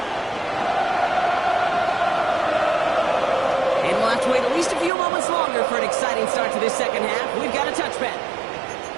And we'll have to wait at least a few moments longer for an exciting start to this second half. We've got a touchback.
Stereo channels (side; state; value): left; drops out; at 4.9 s